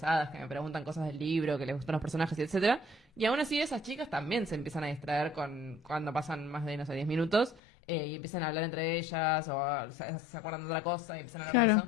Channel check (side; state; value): right; drops out; at 7.6 s